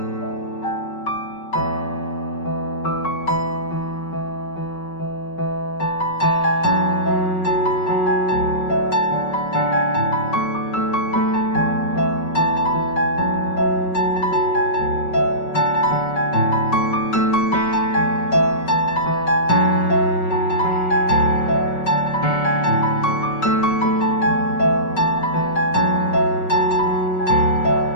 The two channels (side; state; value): right; late; 5.3 ms